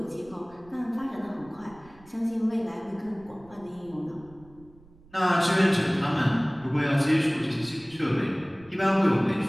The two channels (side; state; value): right; noise; rumble, 25 dB below the sound